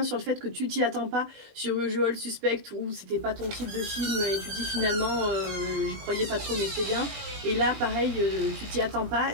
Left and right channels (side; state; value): left; late; 20 ms